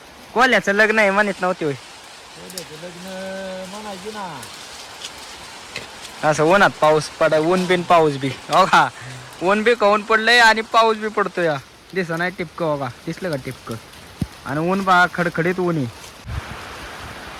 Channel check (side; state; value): both; identical; correlation 1.00